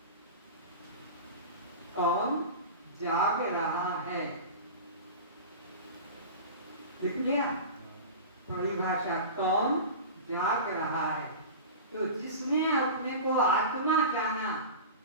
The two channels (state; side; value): inverted; both; correlation -0.31